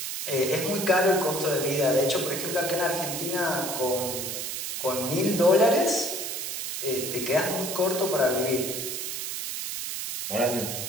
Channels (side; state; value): right; noise; hiss, 4 dB below the sound